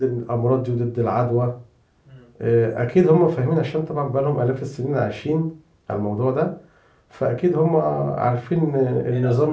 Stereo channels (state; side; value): identical; both; correlation 1.00